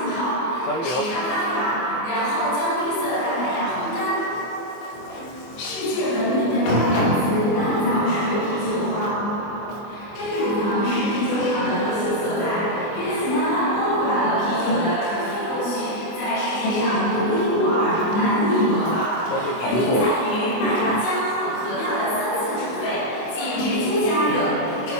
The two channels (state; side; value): late; right; 24 ms